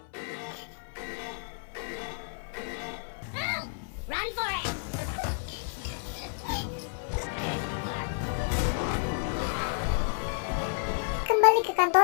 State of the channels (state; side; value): silent; right; 57 dB below the other